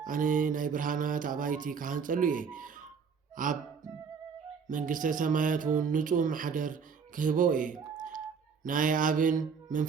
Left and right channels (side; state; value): left; quieter; 6.0 dB